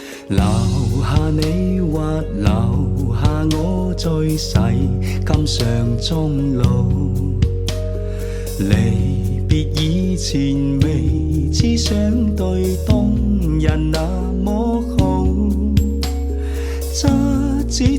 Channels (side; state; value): both; identical; correlation 1.00